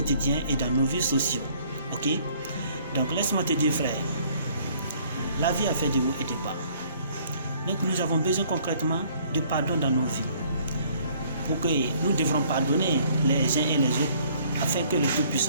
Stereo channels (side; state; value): both; inverted; correlation -0.60